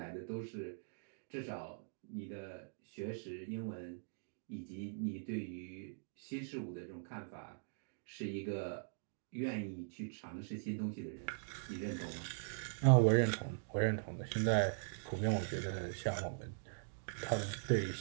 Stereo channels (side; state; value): left; silent; digital silence